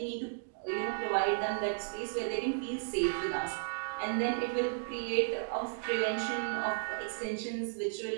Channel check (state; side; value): silent; left; digital silence